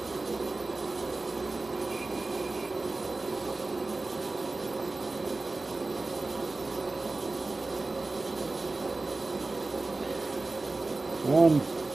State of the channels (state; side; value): quieter; left; 3.3 dB